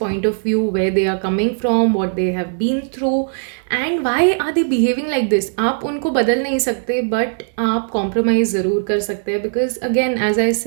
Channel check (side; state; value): left; silent; 67 dB below the other